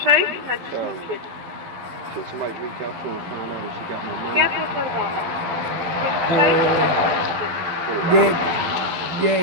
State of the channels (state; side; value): late; left; 12 ms